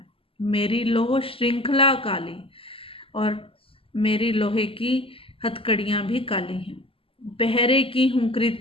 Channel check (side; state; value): right; late; 0.26 ms